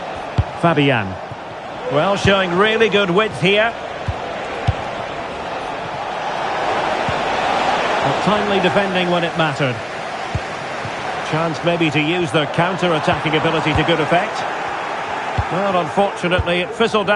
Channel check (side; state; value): both; identical; correlation 1.00